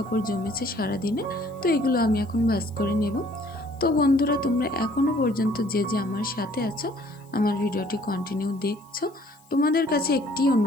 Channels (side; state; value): left; noise; hiss, 30 dB below the sound